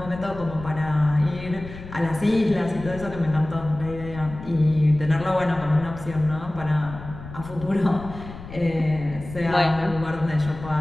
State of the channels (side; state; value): left; noise; rumble, 13 dB below the sound